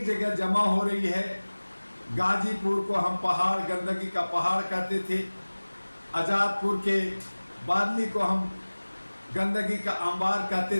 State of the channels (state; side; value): inverted; both; correlation -1.00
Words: जगह जमा हो रही है। गाजीपुर को हम पहाड़, गंदगी का पहाड़ कहते थे। आज़ादपुर के बादली को हम गंदगी का अंबार